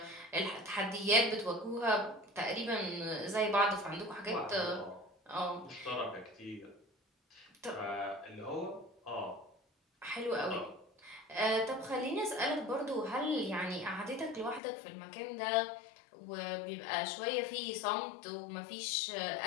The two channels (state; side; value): drops out; right; at 14.6 s